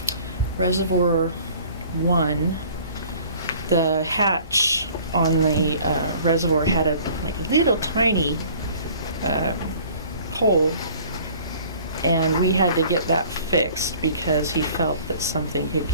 Reservoir 1, the hatch on the reservoir had a little tiny hole, and we had to get that fixed because he felt that something could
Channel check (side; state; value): both; inverted; correlation -0.51